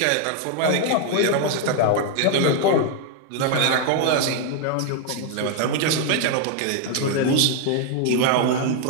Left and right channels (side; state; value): both; different; correlation 0.00